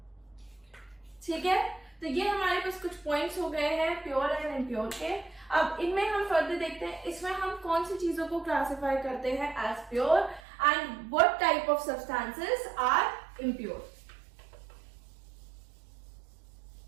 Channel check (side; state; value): left; drops out; at 10.4 s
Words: ठीक है। तो ये हमारे पास कुछ पॉइंट्स हो गए हैं प्योर एंड इम्प्योर के। अब इनमें हम फर्दर देखते हैं इसमें हम कौन सी चीजों को क्लासिफाई करते हैं as pure and what type of substances are impure.